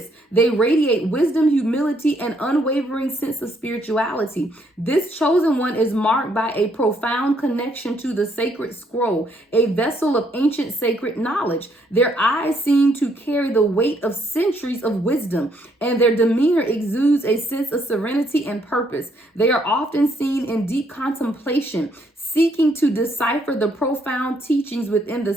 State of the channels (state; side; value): normal; both; correlation 0.71